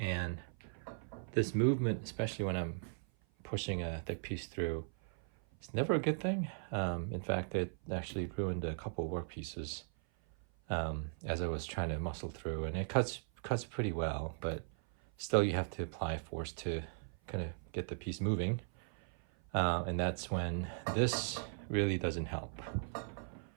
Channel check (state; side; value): silent; left; 52 dB below the other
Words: this movement, especially when I'm pushing a thick piece through, it's never a good thing. In fact, it actually ruined a couple of work pieces as I was trying to muscle through, and it cuts pretty well, but still you have to apply force to kind of get the piece moving, and that's when this really doesn't help.